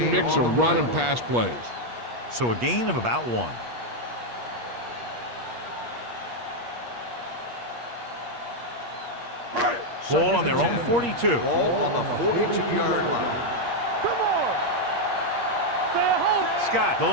mix of run and pass plays. So a gain of about 1. Ball on their own 42. Ball on the 42-yard line. Scott, the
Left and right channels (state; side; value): late; left; 8.4 ms